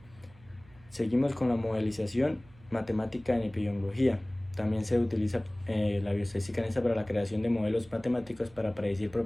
Seguimos con la modelización matemática en epidemiología. También se utiliza la bioestadística en esta para la creación de modelos matemáticos para predecir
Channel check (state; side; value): noise; right; hum, 25 dB below the sound